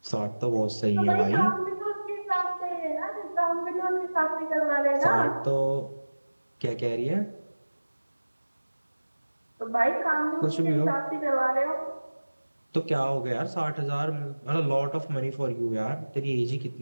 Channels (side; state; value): both; inverted; correlation -1.00